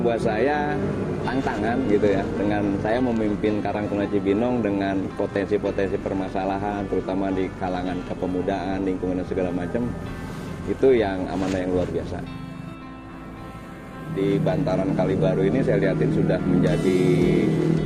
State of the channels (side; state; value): both; identical; correlation 1.00